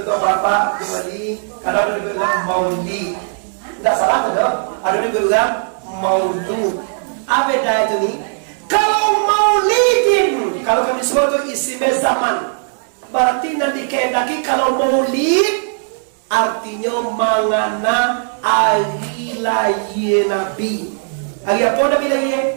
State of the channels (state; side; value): silent; left; digital silence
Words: apa-apa kembali. Karena ada yang bilang maulid. Tidak salah ada. Ada yang bilang maulud. Apa beda itu nih? Kalau maulidin, kalau kami sebut itu isim zaman. Berarti nanti kehendaki kalau maulid artinya mangana hari lahir Nabi. Hari apa Nabi lahir?